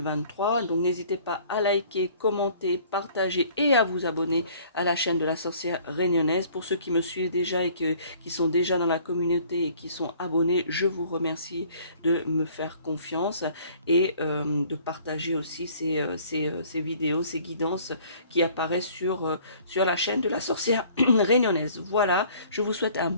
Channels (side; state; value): both; inverted; correlation -0.54